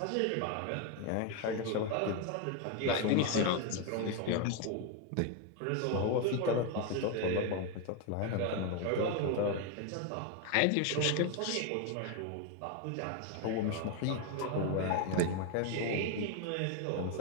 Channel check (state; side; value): different; both; correlation 0.01